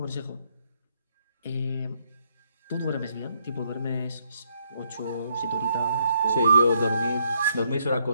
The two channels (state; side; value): inverted; both; correlation -0.73